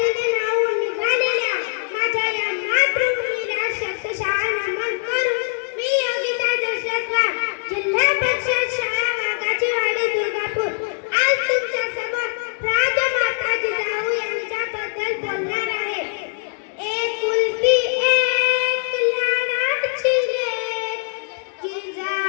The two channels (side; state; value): right; silent; digital silence